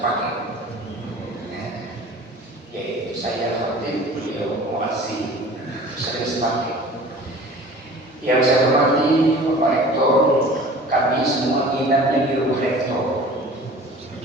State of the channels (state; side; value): normal; both; correlation 0.43